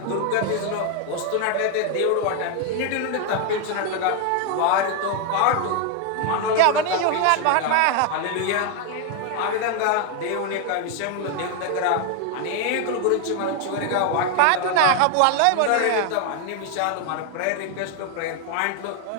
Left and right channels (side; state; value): both; different; correlation 0.01